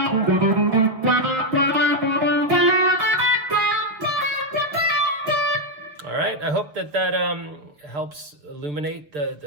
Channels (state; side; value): late; left; 6.6 ms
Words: All right, I hope that helps illuminate